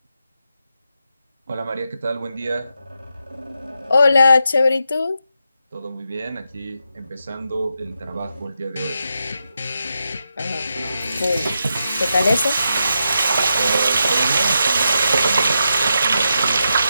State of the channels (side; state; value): both; inverted; correlation -0.85